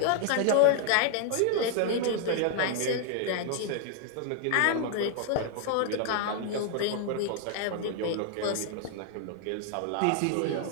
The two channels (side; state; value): both; different; correlation 0.00